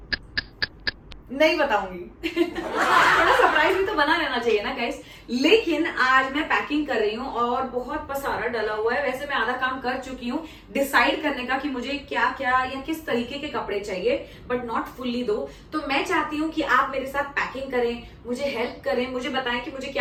नहीं बताऊंगी थोड़ा सरप्राइज भी तो बना रहना चाहिए ना गाइस। लेकिन आज मैं पैकिंग कर रही हूँ और बहुत पसारा डला हुआ है। वैसे मैं आधा काम कर चुकी हूँ डिसाइड करने का कि मुझे क्या क्या या किस तरीके के कपड़े चाहिए, बट नॉट फुल्ली दो। तो मैं चाहती हूँ कि आप मेरे साथ पैकिंग करें, मुझे हेल्प करें, मुझे बताएं कि मुझे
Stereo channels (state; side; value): identical; both; correlation 1.00